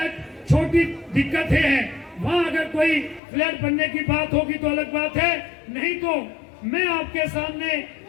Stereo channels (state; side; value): drops out; right; at 3.2 s